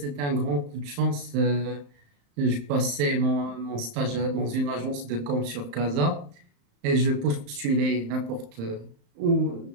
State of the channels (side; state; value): left; late; 35 ms